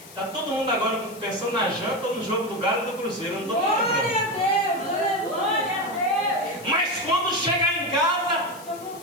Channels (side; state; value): left; noise; hiss, 19 dB below the sound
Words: Está todo mundo agora pensando na janta ou no jogo do Galo e do Cruzeiro. Eu não estou Glória a Deus. Glória a Deus. Mas quando chegar em casa,